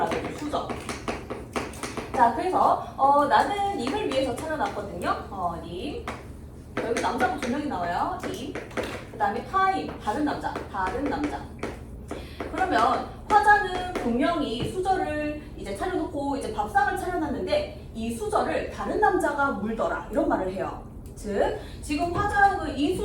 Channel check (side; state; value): both; identical; correlation 1.00